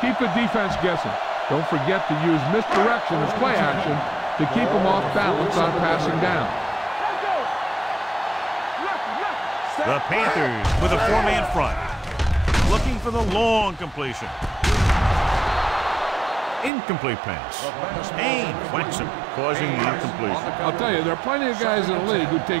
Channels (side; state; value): left; drops out; at 16.7 s